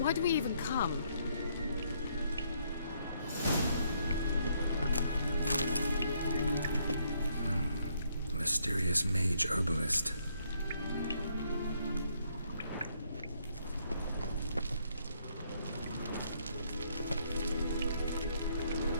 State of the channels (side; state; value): both; inverted; correlation -0.71